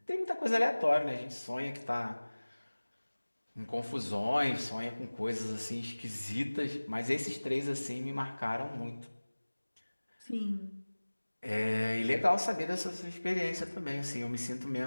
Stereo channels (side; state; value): both; inverted; correlation -1.00